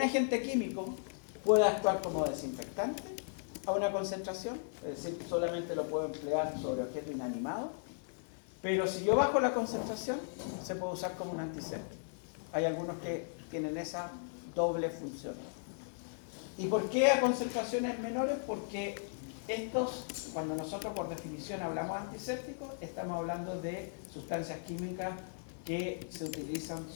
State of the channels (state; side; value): silent; right; digital silence